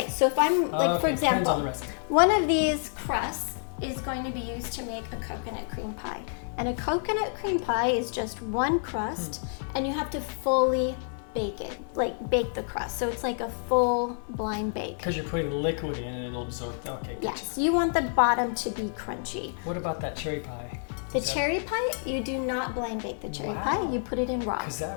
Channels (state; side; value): silent; right; 58 dB below the other